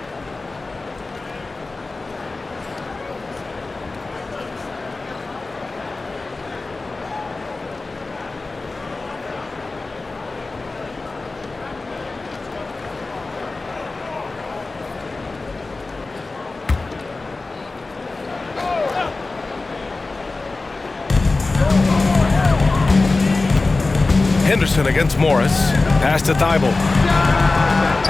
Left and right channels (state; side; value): quieter; right; 3.5 dB